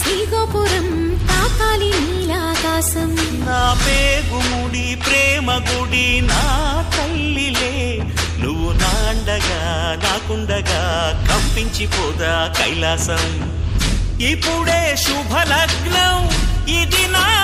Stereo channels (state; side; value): identical; both; correlation 1.00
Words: తాకాలి నీలాకాశం. నా పేగుముడి ప్రేమ గుడి నా తల్లిలే నువ్వు నాండగా నాకుండగా కంపించిపోదా కైలాసం. ఇప్పుడే శుభలగ్నం ఇది నా